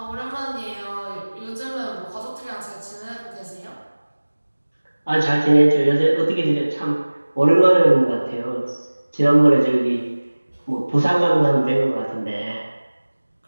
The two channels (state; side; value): inverted; both; correlation -1.00